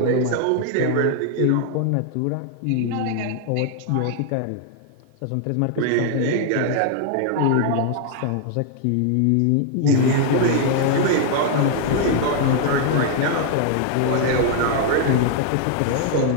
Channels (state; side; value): different; both; correlation 0.00